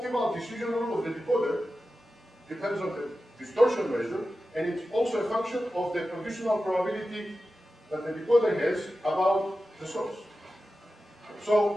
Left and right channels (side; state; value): both; normal; correlation 0.93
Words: decision rule of the decoder depends on the distortion measure, and it's also a function of the conditional probability that the decoder has about the source.